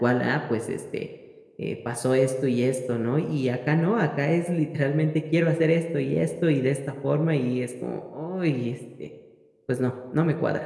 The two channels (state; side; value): identical; both; correlation 1.00